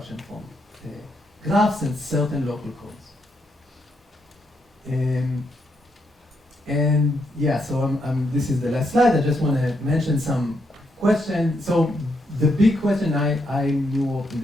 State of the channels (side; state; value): both; normal; correlation 0.78